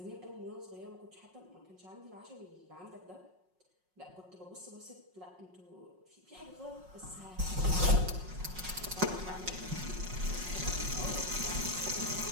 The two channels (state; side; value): late; left; 5.5 ms